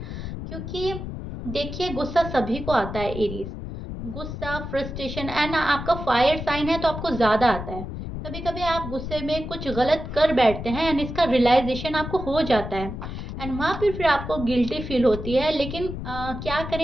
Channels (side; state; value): left; noise; rumble, 7 dB below the sound